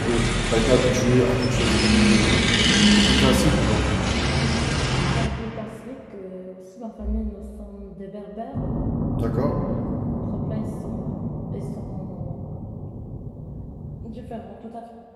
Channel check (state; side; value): identical; both; correlation 1.00